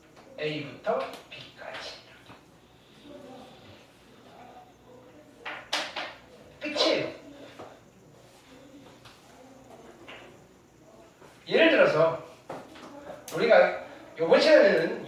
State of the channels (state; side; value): identical; both; correlation 1.00